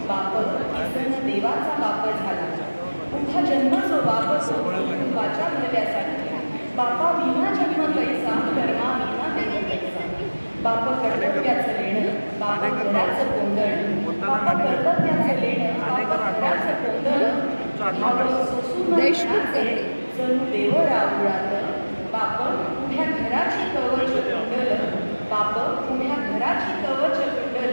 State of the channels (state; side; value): inverted; both; correlation -1.00